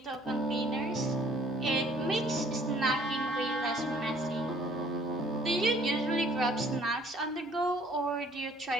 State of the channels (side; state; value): both; normal; correlation 0.58